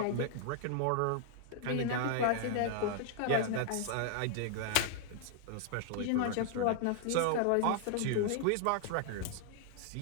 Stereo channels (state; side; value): different; both; correlation 0.00